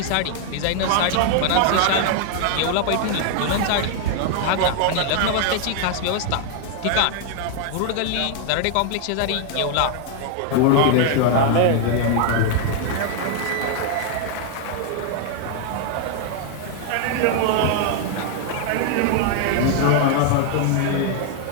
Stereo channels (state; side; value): different; both; correlation 0.00